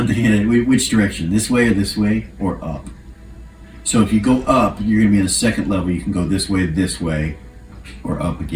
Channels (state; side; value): identical; both; correlation 1.00